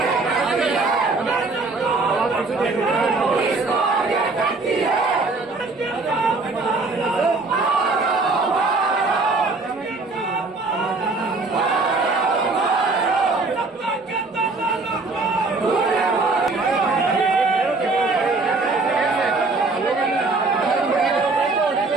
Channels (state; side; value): quieter; left; 3.6 dB